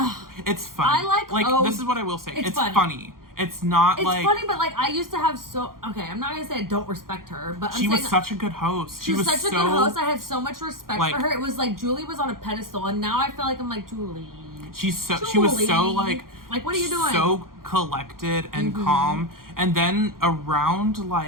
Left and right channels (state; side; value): late; left; 0.92 ms